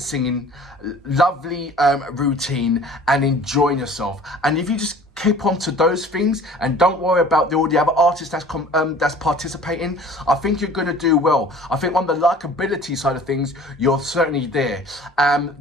singing, lovely routine, and enjoying yourself. And if you just keep on to those things and don't worry about all the other artists that's participating, I think you're going to do well. I think on the likability side of things, you're certainly there.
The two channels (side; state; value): both; normal; correlation 0.47